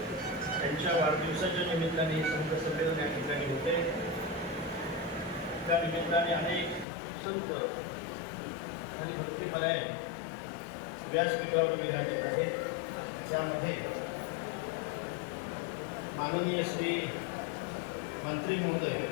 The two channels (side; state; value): right; drops out; at 6.9 s